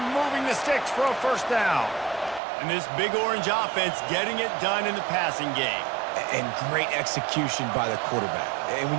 moving the sticks for a first down. And this big orange offense getting it done in the passing game. And great execution by the quarterback. And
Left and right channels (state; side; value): drops out; left; at 2.4 s